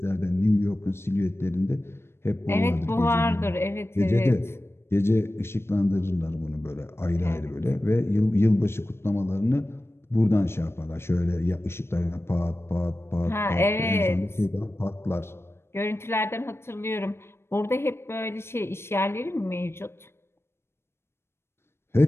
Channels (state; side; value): late; right; 0.12 ms